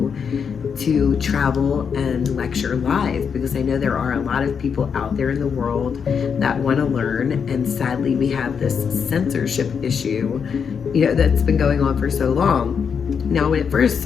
to travel and lecture live, because I know there are a lot of people out there in the world that want to learn, and sadly we have this censorship issue, that's been going on for so long. Now, when it first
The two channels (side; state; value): right; quieter; 6.6 dB